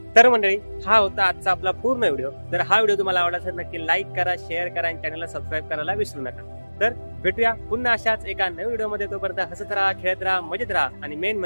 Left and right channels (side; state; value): both; inverted; correlation -1.00